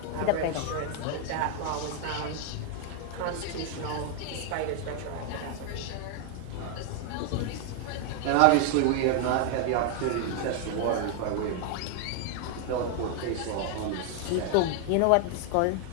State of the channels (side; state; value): both; different; correlation 0.00